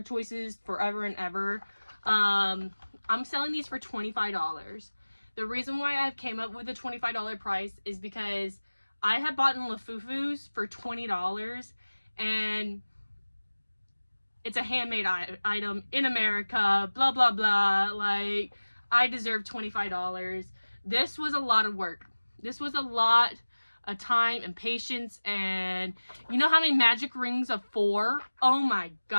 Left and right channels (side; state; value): both; inverted; correlation -1.00